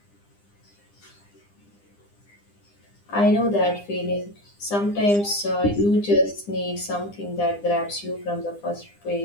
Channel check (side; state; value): right; late; 9.9 ms